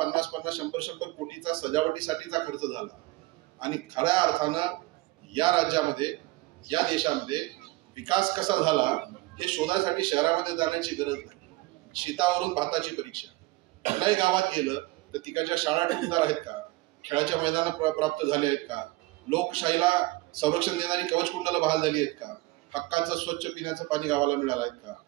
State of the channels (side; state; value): left; quieter; 20.7 dB